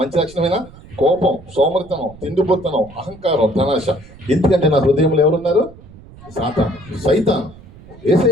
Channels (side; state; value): right; noise; rumble, 21 dB below the sound